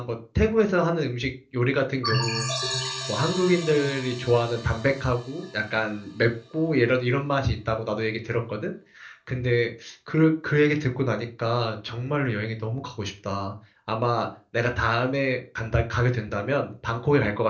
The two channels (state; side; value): identical; both; correlation 1.00